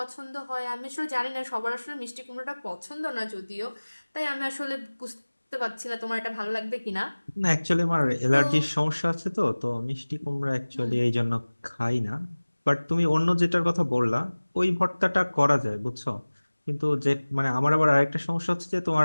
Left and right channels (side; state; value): both; inverted; correlation -1.00